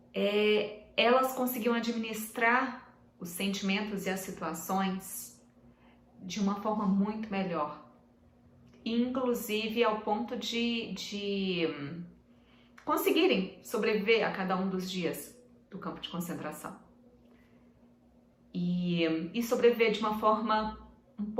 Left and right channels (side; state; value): both; identical; correlation 1.00